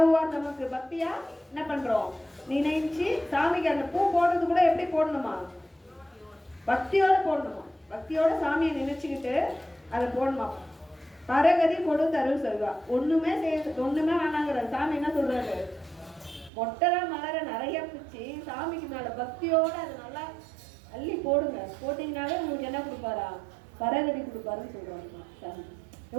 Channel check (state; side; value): drops out; left; at 16.5 s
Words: நமக்கு. பக்தியா என்ன பண்றோம், நினைச்சு சாமிக்கு அந்த பூ போடுறது கூட எப்படி போடணுமா, பக்தியோட போடணுமா. பக்தியோட சாமியை நினைச்சுக்கிட்டு அதை போடணுமா. பரகதி கொடுத்தருள் சொல்வா. ஒண்ணுமே வேணாங்கிற சாமி என்ன சொல்றாரு, மொட்டரா மலரை நிறைய பிச்சு சாமிக்கு மேல பக்தியோட அதை நல்லா அள்ளி போடுங்க. போட்டீங்கன்னாலே உங்களுக்கு என்ன கொடுப்பாரா, பரகதி கொடுப்பாருன்னு சொல்றாங்க சாமி.